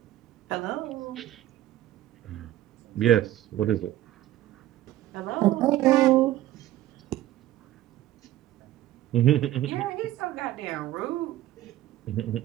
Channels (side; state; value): left; quieter; 14.1 dB